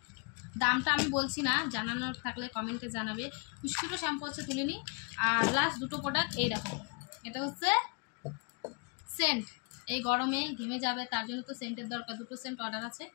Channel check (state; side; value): quieter; right; 34.8 dB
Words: দামটা আমি বলছি না, জানানোর থাকলে কমেন্টে জানাবে। খুশকিরও শ্যাম্পু হচ্ছে তুলিনি। আর লাস্ট দুটো প্রোডাক্ট এই দেখো, এটা হচ্ছে সেন্ট। এই গরমে ঘেমে যাবে তার জন্য তো সেন্টের দরকার। দুটো সেন্ট অর্ডার আছে।